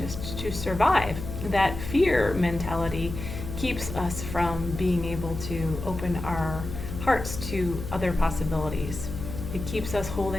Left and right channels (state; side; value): noise; left; hum, 8 dB below the sound